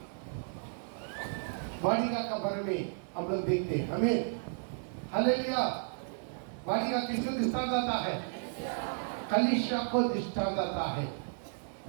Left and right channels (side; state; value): left; silent; digital silence